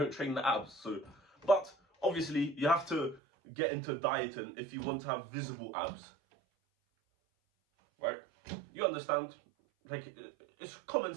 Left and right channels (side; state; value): left; drops out; at 3.2 s